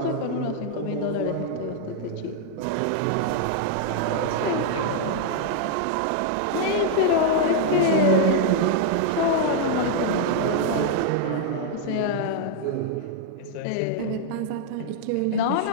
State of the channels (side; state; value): both; different; correlation -0.01